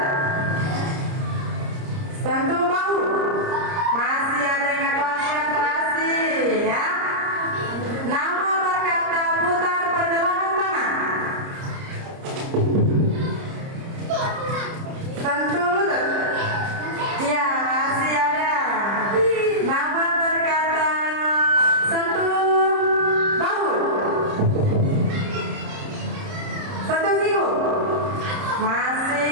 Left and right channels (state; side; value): late; left; 30 ms